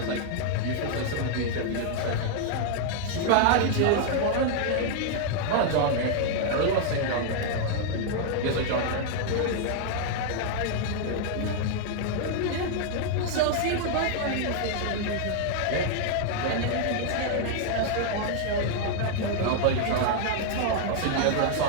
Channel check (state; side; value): different; both; correlation 0.00